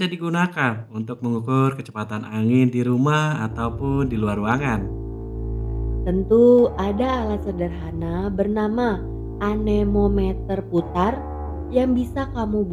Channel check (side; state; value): both; identical; correlation 1.00